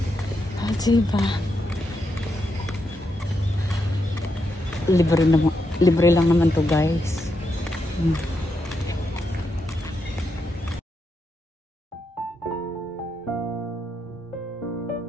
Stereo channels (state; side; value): normal; both; correlation 0.83